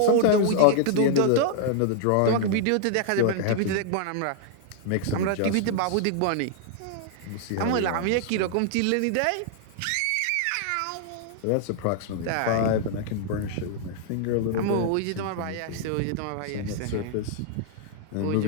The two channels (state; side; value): different; both; correlation -0.01